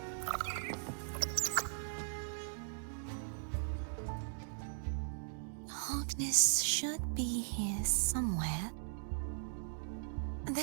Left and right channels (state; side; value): silent; left; digital silence